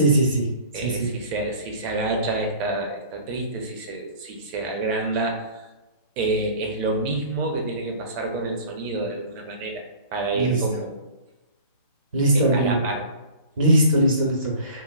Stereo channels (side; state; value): both; inverted; correlation -0.43